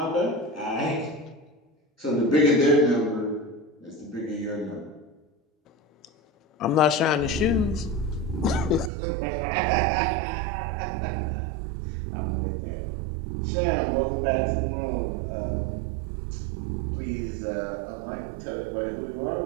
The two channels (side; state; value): left; drops out; at 8.9 s